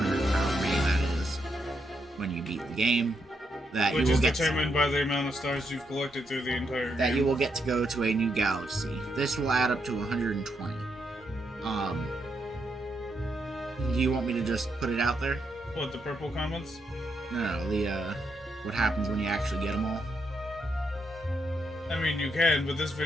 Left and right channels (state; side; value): normal; both; correlation 0.80